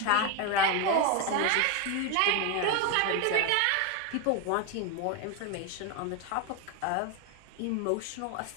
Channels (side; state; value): both; different; correlation 0.01